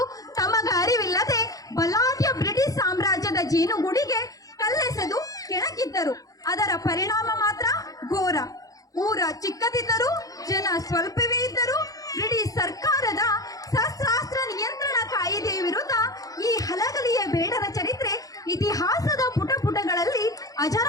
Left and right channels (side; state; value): right; late; 0.17 ms